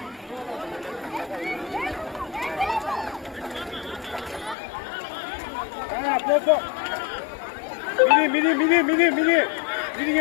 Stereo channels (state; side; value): drops out; right; at 4.5 s